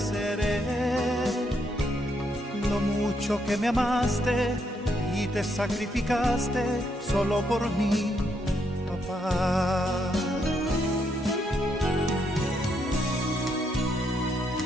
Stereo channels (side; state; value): both; normal; correlation 0.76